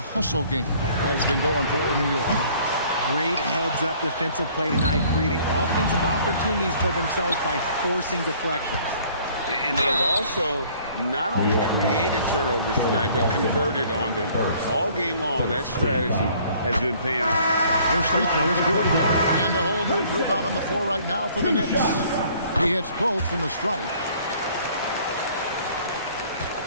hustle game has been going for New York. Great heads-up defensive play tonight, creating offensive opportunities for themselves by forcing deflections. And they've also not only created turnovers tonight, but converted on them. All game long, that strategy has been paying off. First free throw is good. And a whole new group out on the floor right now for the Knicks. He hits both from the stripe.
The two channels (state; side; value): inverted; both; correlation -0.57